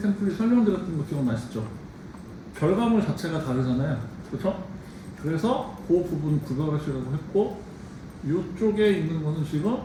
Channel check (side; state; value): both; identical; correlation 1.00